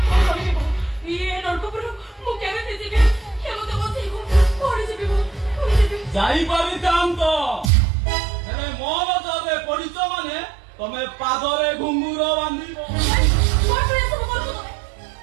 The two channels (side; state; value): left; drops out; at 7.7 s